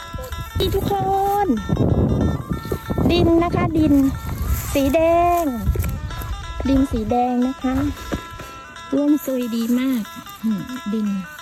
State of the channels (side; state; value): both; identical; correlation 1.00